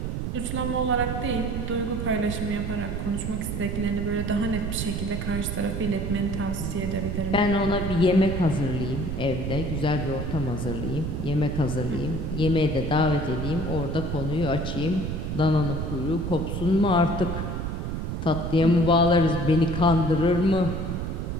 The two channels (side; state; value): right; noise; rumble, 3 dB below the sound